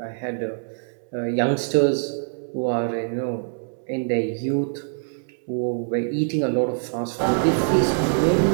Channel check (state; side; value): silent; left; digital silence